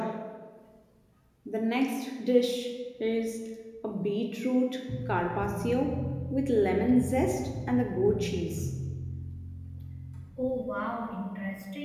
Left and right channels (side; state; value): both; identical; correlation 1.00